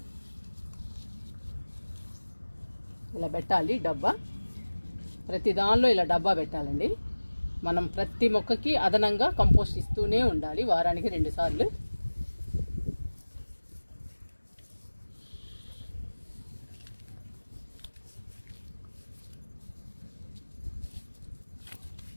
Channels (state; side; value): inverted; both; correlation -1.00